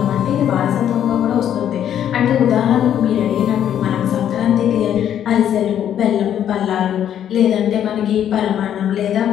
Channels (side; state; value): right; quieter; 10.1 dB